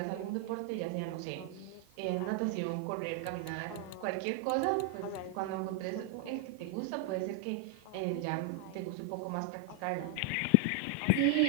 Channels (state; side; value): different; both; correlation 0.00